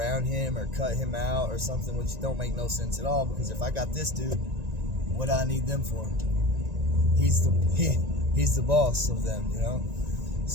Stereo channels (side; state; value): left; late; 1.9 ms